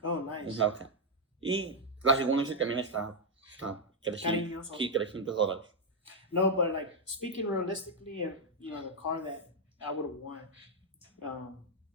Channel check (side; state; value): both; normal; correlation -0.01